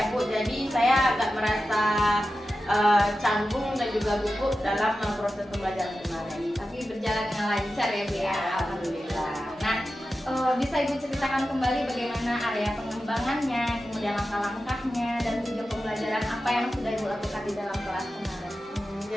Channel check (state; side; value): normal; both; correlation 0.92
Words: Bu, jadi saya agak merasa canggung dan juga gugup dalam proses pembelajaran kemarin. Tapi berjalan dengan lancar ya Bu ya, alhamdulillah. Nah, bisa Ibu ceritakan kembali bagaimana area pengembangannya, kemudian langkah-langkahnya, dan tujuan pembelajaran apa yang sudah Ibu lakukan di dalam kelas kemarin?